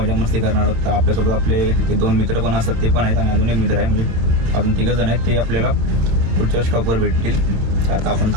मस्ती करणार आहोत. तर आपल्यासोबत आपले ते 2 मित्र पण असतात, ते पण आहेत आणि अजून एक मित्र आहे, म्हणजे अजून 3 जण आहेत. ते आपल्याला पुढच्या स्टॉपवर भेटतील. तर आता आपण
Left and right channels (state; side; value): late; left; 26 ms